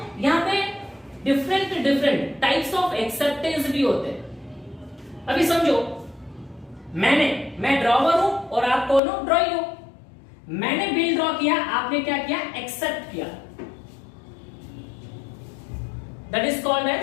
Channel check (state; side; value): drops out; right; at 9.0 s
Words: यहाँ पे डिफरेंट टाइप्स ऑफ एक्सेप्टेंस भी होते हैं। अभी समझो, मैं ड्रॉवर हूं और आप कौन हो, ड्रॉई हो। मैंने बिल ड्रॉ किया, आपने क्या किया, एक्सेप्ट किया। That is called